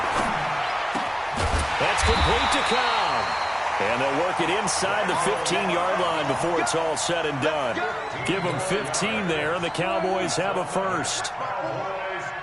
That's complete to Cobb. And they'll work it inside the 15-yard line before it's all said and done. Give them 15 there, and the Cowboys have a 1st.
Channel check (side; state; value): both; identical; correlation 1.00